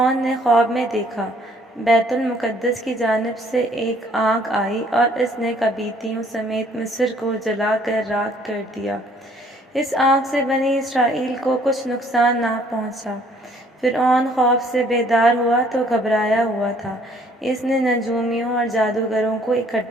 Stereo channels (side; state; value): both; normal; correlation 0.61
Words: نے خواب میں دیکھا، بیت المقدس کی جانب سے ایک آگ آئی اور اس نے قبیطیوں سمیت مصر کو جلا کر راکھ کر دیا۔ اس آگ سے بنی اسرائیل کو کچھ نقصان نہ پہنچا۔ فرعون خوف سے بیدار ہوا تو گھبرایا ہوا تھا۔ اس نے نجومیوں اور جادوگروں کو